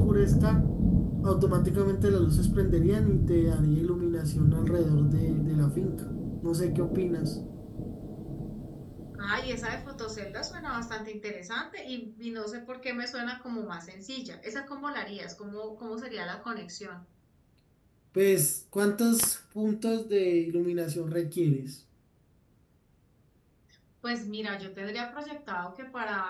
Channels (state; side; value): identical; both; correlation 1.00